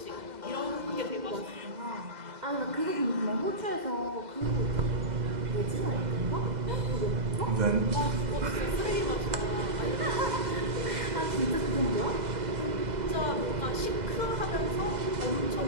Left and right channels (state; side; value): late; left; 2.0 ms